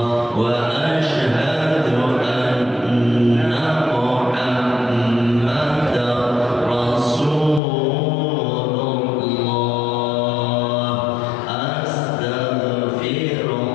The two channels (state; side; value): drops out; right; at 7.6 s